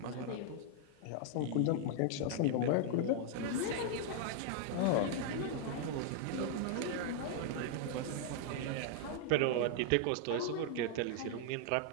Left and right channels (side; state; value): both; different; correlation 0.00